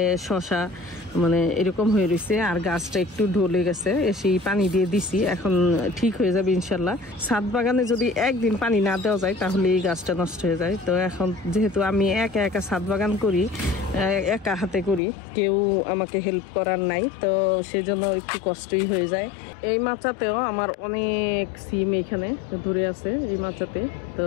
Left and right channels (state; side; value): drops out; right; at 15.0 s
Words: শশা মানে এরকম হয়ে রয়েছে, আর গাছটা একটু ঢলে গেছে, এসে পানি দিয়ে দিছি, এখন ঠিক হয়ে যাবে ইনশাল্লাহ। ছাদ বাগানে যদি একদিন পানি না দেওয়া যায় তাহলে এই গাছটা নষ্ট হয়ে যায়। তো এখন যেহেতু আমি একা একা ছাদ বাগান করি, একা হাতে করি, কেউ আমাকে হেল্প করার নাই, তো সেজন্য একটু কষ্টই হয়ে যায়। এই মাচাতেও আমার অনেক সিম এখানে ধরে আছে এই মাচাতে। তো